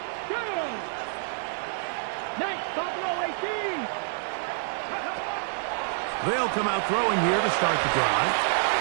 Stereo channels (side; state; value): left; silent; digital silence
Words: Down. Nice, Buffalo 18. They'll come out throwing here to start the drive.